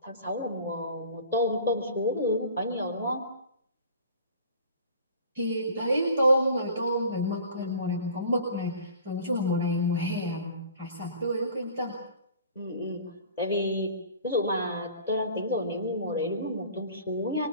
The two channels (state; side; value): inverted; both; correlation -0.45